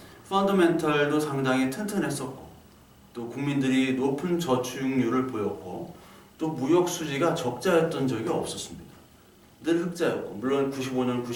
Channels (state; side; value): identical; both; correlation 1.00